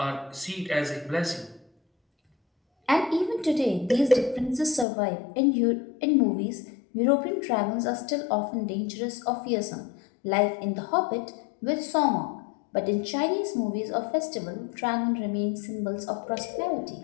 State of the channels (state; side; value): drops out; right; at 4.9 s